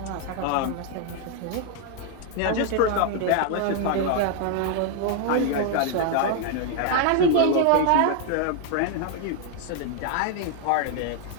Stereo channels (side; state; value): both; different; correlation 0.00